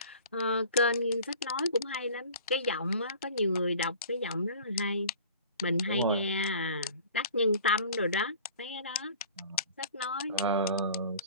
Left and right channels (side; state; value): both; inverted; correlation -0.44